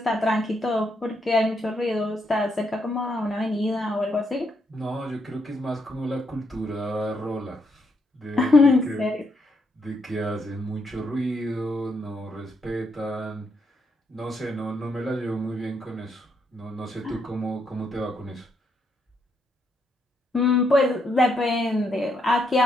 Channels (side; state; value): both; normal; correlation 0.77